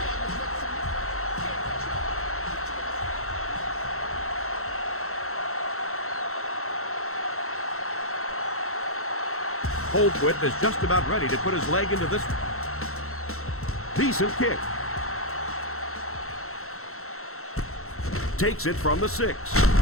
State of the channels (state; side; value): late; right; 0.63 ms